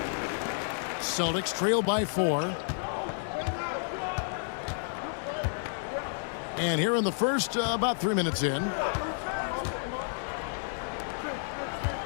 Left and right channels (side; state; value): right; silent; 57 dB below the other